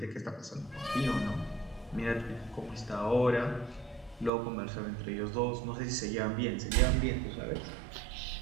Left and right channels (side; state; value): left; drops out; at 4.3 s